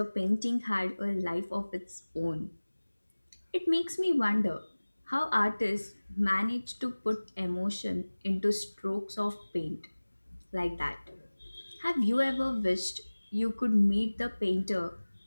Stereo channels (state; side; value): inverted; both; correlation -1.00